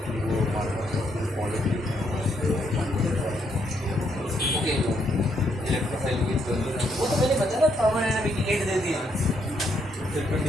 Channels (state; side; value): normal; both; correlation 0.74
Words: वो ओके इलेक्ट्रोफाइल वो तो मैंने बताया ना, पावर एनर्जी की 8 दे दिया।